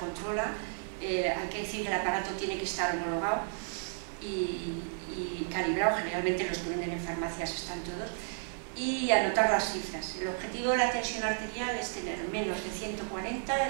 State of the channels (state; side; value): silent; left; 56 dB below the other